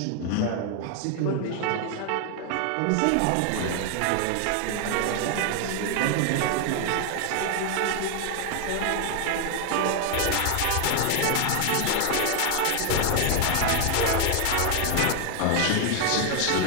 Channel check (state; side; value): different; both; correlation 0.00